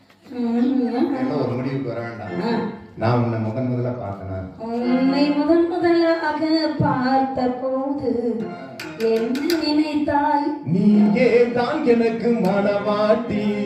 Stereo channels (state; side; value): identical; both; correlation 1.00